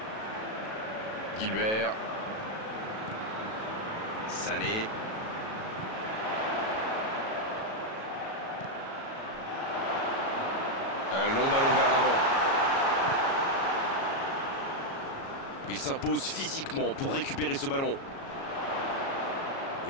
Gilbert. Sané. Un long ballon vers l'avant. Il s'impose physiquement pour récupérer ce ballon.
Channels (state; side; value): late; right; 37 ms